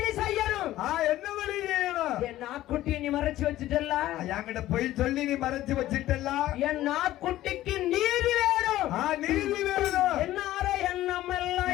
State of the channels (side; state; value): right; quieter; 14.7 dB